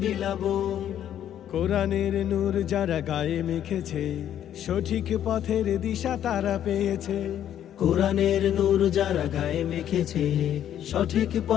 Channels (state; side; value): quieter; right; 10.6 dB